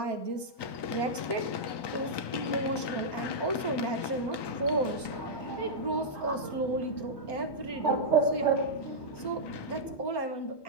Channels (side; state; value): right; late; 1.2 ms